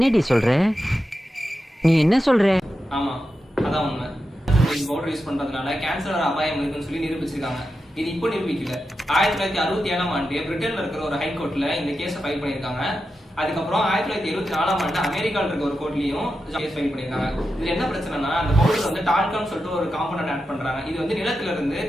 சொல்ற? நீ என்ன சொல்ற? ஆமா, அதான் உண்மை. இந்த பவுடர் யூஸ் பண்றதுனால கேன்சர் வர அபாயம் இருக்குன்னு சொல்லி நிரூபிச்சிருக்காங்க. இது இப்போ நிரூபிக்கல. 1967ஆம் ஆண்டு பிரிட்டன்ல இருக்கிற ஒரு ஹைகோர்ட்ல இந்த கேஸை ஃபைல் பண்ணியிருக்காங்க. அதுக்கப்புறம் 1974ஆம் ஆண்டு அமெரிக்காவில் இருக்க ஒரு கோர்ட்லயும் கேஸ் ஃபைல் பண்ணியிருக்காங்க. இதுல என்ன பிரச்சனைனா, அந்த பவுடர் வந்து டால்கம் சொல்லிட்டு ஒரு காம்பனன்ட் ஆட் பண்றாங்க. இது வந்து நிலத்துல இருந்து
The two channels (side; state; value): both; normal; correlation 0.89